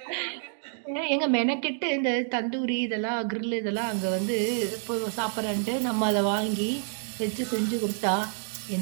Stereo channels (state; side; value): silent; left; 59 dB below the other